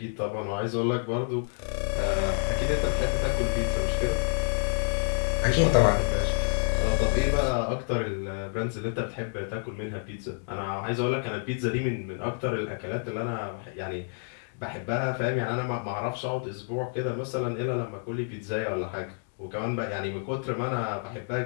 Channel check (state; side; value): silent; right; 59 dB below the other